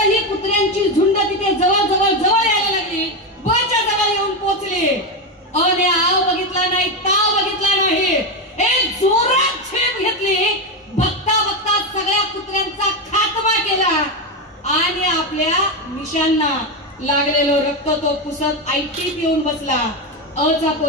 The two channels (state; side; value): normal; both; correlation 0.11